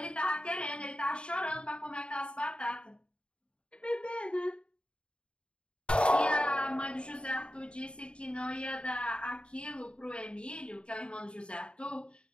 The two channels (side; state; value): right; late; 0.054 ms